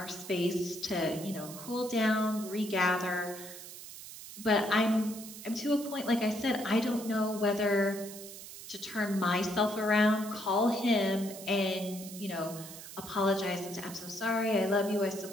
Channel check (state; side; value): noise; right; hiss, 13 dB below the sound